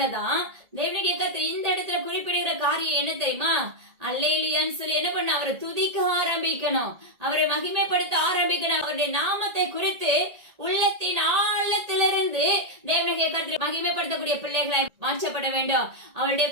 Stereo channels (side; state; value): left; late; 1.8 ms